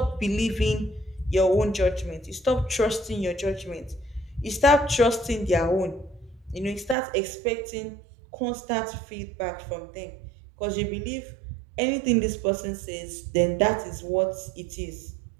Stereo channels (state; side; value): drops out; left; at 7.0 s